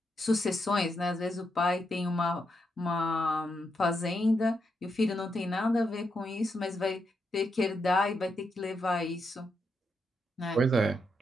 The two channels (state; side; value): normal; both; correlation 0.82